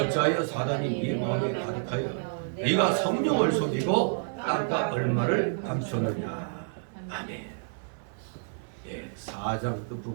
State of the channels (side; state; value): left; silent; digital silence